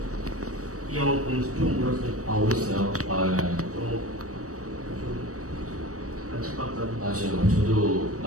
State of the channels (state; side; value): late; left; 0.66 ms